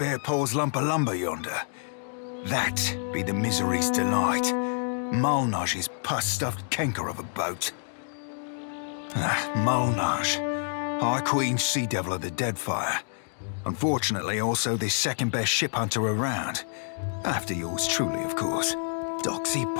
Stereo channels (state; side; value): silent; right; digital silence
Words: paws lump of lumber yonder? That be the misery's delight. Malnage's pus-stuffed canker of a boat. Malnage, High Queen Sea Devil of the Deadfire. Unfortunately, also the second-best ship hunter around. After yours truly, of course. Doxy